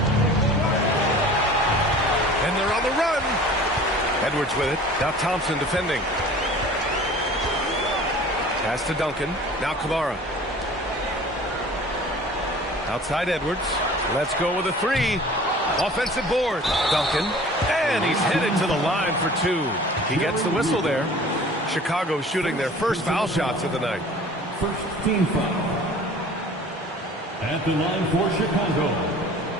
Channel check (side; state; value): both; normal; correlation 0.45